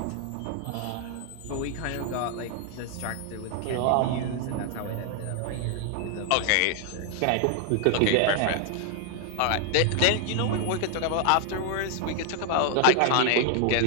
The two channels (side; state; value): both; different; correlation 0.00